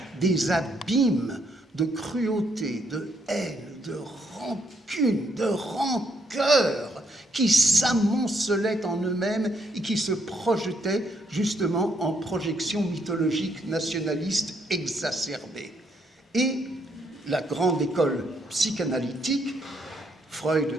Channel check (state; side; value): normal; both; correlation 0.74